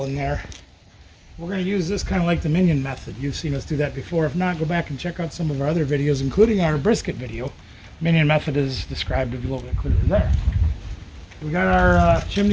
in there. We're going to use this kind of like the minion method. You've seen us do that before. If not, go back and check out some of our other videos, including our brisket video. Minion method is described a little bit clearer there. We got our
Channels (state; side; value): identical; both; correlation 1.00